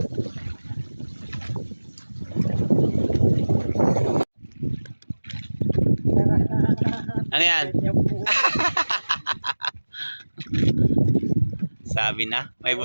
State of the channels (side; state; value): both; inverted; correlation -1.00